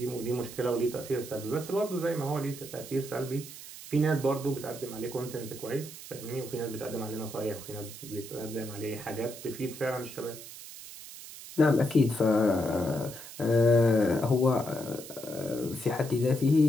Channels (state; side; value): noise; right; hiss, 14 dB below the sound